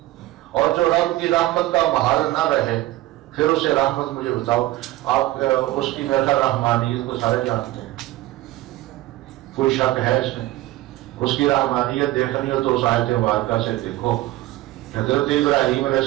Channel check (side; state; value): left; quieter; 16.7 dB